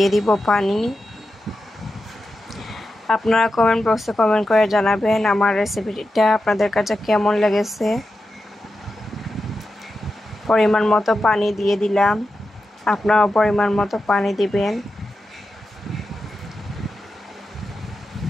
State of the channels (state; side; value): normal; both; correlation 0.90